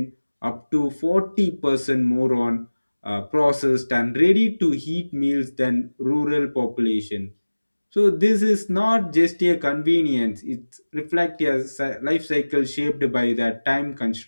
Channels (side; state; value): both; inverted; correlation -1.00